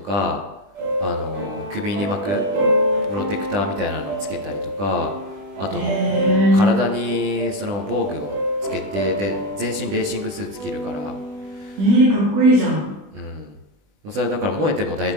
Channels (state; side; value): late; left; 20 ms